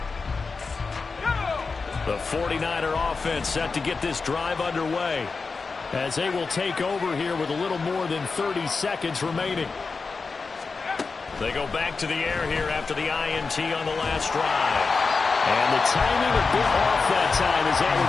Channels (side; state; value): right; quieter; 4.5 dB